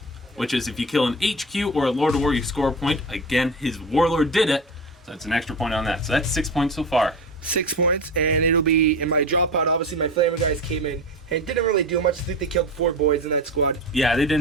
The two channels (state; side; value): normal; both; correlation 0.27